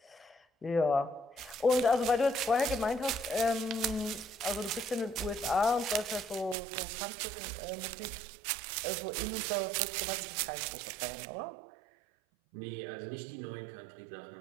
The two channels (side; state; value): left; drops out; at 6.6 s